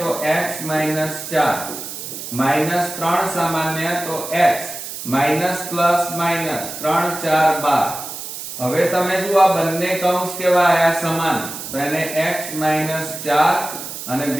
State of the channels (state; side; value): noise; right; hiss, 9 dB below the sound